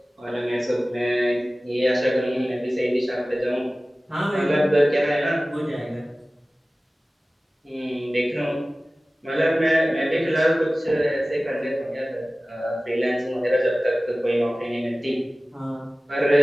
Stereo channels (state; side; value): normal; both; correlation 0.97